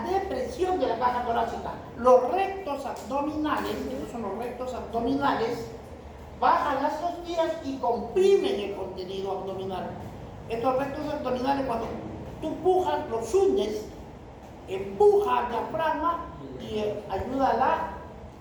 depresión de la caja torácica. Los rectos abdominales, estos son los rectos abdominales, bajan las costillas y comprimen el contenido abdominal. Estos rectos abdominales, cuando tú empujas, los hundes, empuja al diafragma y ayuda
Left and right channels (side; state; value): both; identical; correlation 1.00